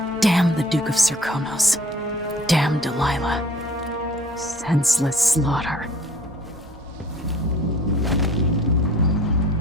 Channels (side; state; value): both; normal; correlation 0.51